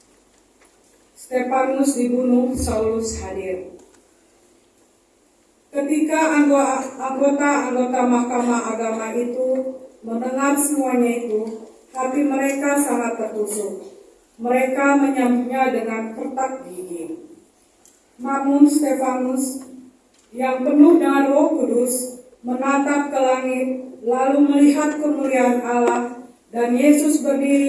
Stefanus dibunuh, Saulus hadir. Ketika anggota Mahkamah Agama itu mendengar semuanya itu, hati mereka sangat tertusuk. Mereka menyambutnya dengan kertak gigi. Namun Stefanus yang penuh dengan Roh Kudus menatap ke langit, lalu melihat kemuliaan Allah dan Yesus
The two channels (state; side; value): identical; both; correlation 1.00